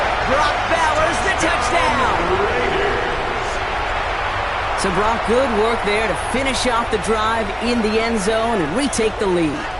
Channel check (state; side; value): identical; both; correlation 1.00